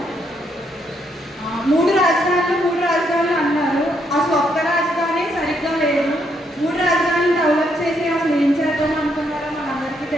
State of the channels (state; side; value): normal; both; correlation 0.75